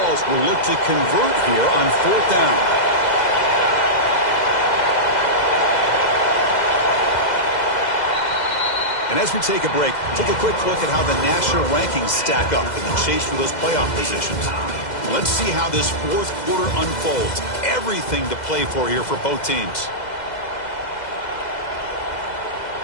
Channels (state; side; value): late; right; 2.0 ms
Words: will look to convert here on 4th down. And as we take a break, take a quick look at how the national rankings stack up in the chase for those playoff positions. Let's see how this 4th quarter unfolds. Everything to play for here for both teams.